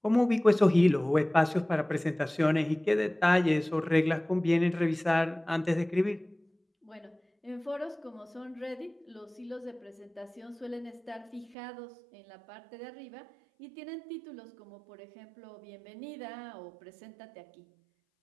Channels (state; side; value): drops out; left; at 11.6 s